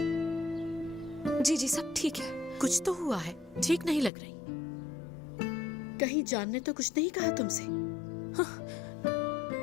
जी जी सब ठीक है। कुछ तो हुआ है, ठीक नहीं लग रही। कहीं जान ने तो कुछ नहीं कहा तुमसे?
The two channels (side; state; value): right; drops out; at 4.1 s